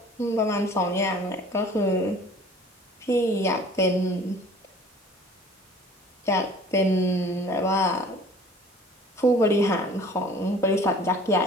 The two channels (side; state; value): both; normal; correlation 0.49